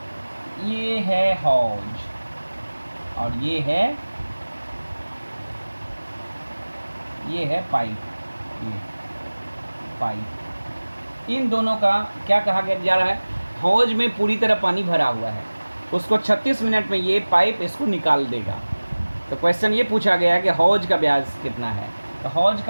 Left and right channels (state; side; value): inverted; both; correlation -1.00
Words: ये है हौज और ये है पाइप, ये पाइप। इन दोनों का क्या कहा जा रहा है, हौज में पूरी तरह पानी भरा हुआ है। उसको 36 मिनट में ये पाइप इसको निकाल देगा। तो क्वेश्चन ये पूछा गया है कि हौज का व्यास कितना है। तो हौज